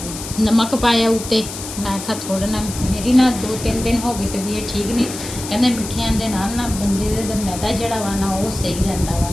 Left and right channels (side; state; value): left; noise; hiss, 10 dB below the sound